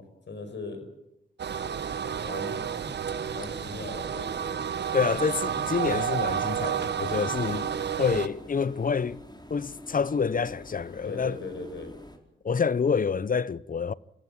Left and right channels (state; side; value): normal; both; correlation 0.20